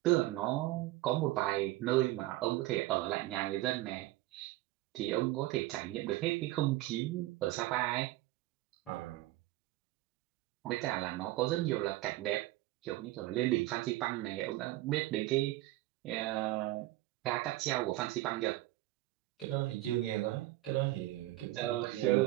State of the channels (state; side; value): quieter; left; 17.4 dB